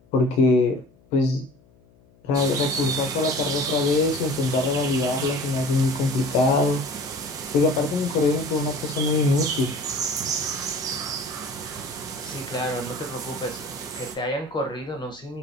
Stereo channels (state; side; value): noise; left; hum, 30 dB below the sound